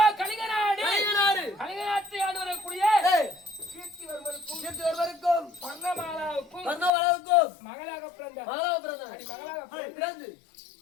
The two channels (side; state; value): right; drops out; at 6.9 s